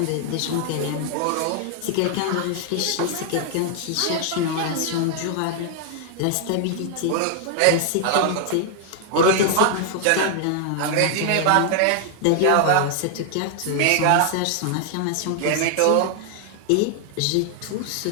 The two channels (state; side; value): different; both; correlation 0.00